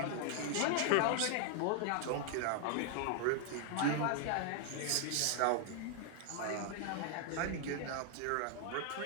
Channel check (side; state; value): both; different; correlation 0.00